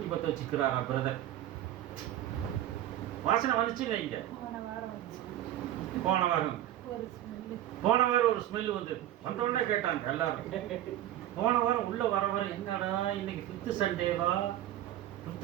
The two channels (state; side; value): quieter; left; 12.8 dB